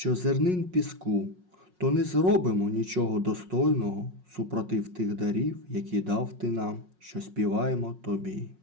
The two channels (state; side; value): late; left; 5.5 ms